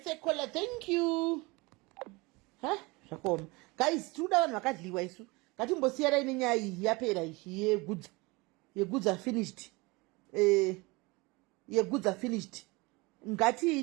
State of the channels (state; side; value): quieter; left; 24.8 dB